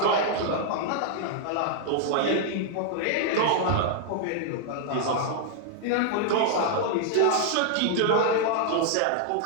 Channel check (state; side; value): different; both; correlation -0.01